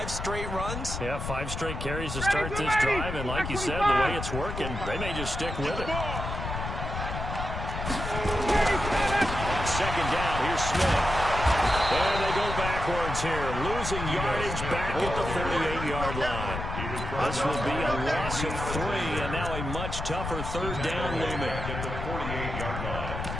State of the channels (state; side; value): noise; left; rumble, 5 dB below the sound